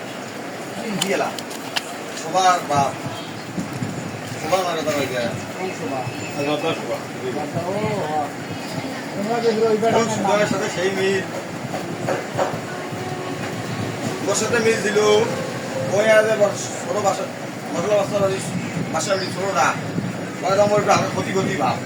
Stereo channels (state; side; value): identical; both; correlation 1.00